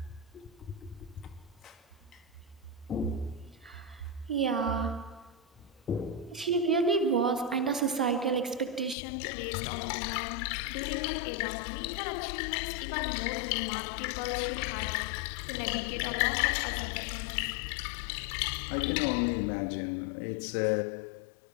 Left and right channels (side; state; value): right; drops out; at 9.0 s